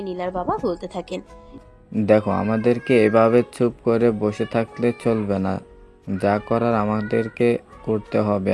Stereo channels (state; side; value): identical; both; correlation 1.00